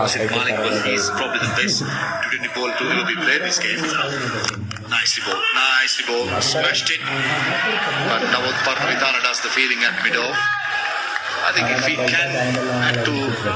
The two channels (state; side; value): identical; both; correlation 1.00